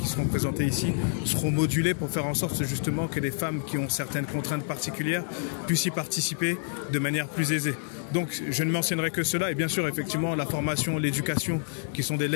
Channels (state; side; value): silent; right; 59 dB below the other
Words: seront présentées ici seront modulées pour faire en sorte justement que les femmes qui ont certaines contraintes particulières puissent y participer de manière plus aisée. Donc je ne mentionnerai que cela et bien sûr effectivement la formation, l'éducation qui sont des